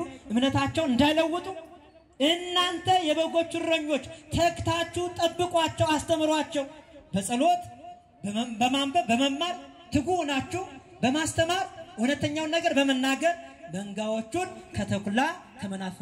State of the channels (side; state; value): both; identical; correlation 1.00